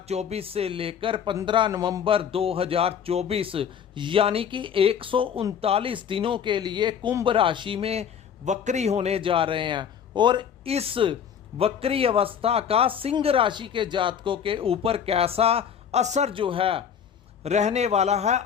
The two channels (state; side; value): quieter; right; 8.0 dB